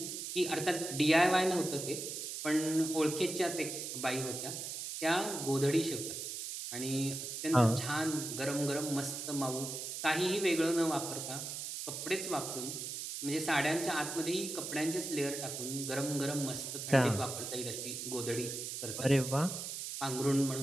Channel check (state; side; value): noise; right; hiss, 6 dB below the sound